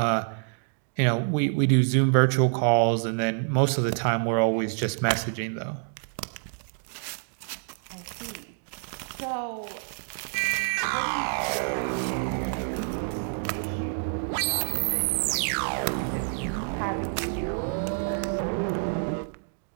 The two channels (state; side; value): silent; left; digital silence